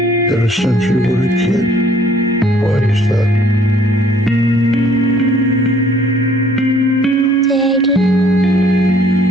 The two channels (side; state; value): both; normal; correlation 0.59